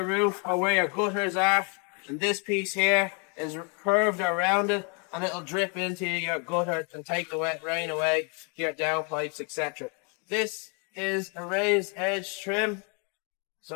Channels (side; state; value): right; quieter; 36.4 dB